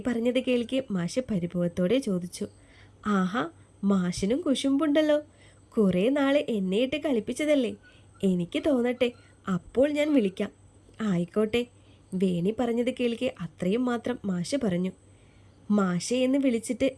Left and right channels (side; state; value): both; identical; correlation 1.00